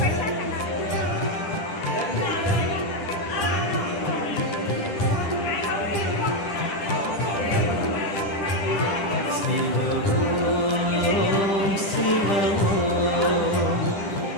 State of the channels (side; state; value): right; late; 10 ms